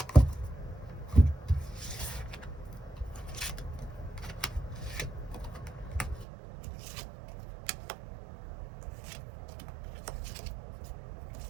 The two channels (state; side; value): drops out; left; at 6.2 s